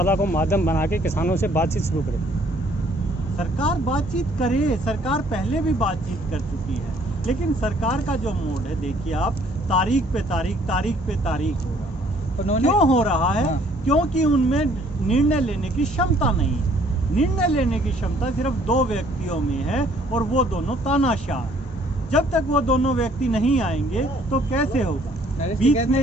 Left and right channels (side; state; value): both; normal; correlation 0.61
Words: को माध्यम बना के किसानों से बातचीत शुरू करे। सरकार बातचीत करे, सरकार पहले भी बातचीत कर चुकी है, लेकिन सरकार का जो मोड है देखिए आप, तारीख पे तारीख हो रहा है। क्यों हो रहा है? क्योंकि उनमें निर्णय लेने की क्षमता नहीं है। निर्णय लेने की क्षमता सिर्फ 2 व्यक्तियों में है और वो दोनों तानाशाह। जब तक वो दोनों व्यक्ति नहीं आएंगे तो कैसे होगा? नरेश ने